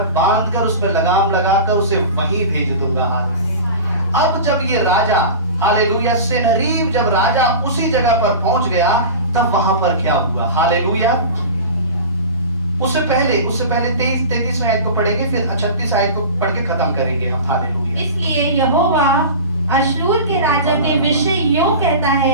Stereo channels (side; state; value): both; inverted; correlation -0.33